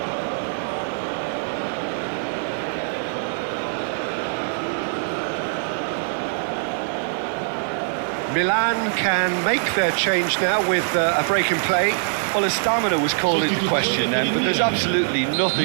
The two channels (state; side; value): silent; left; digital silence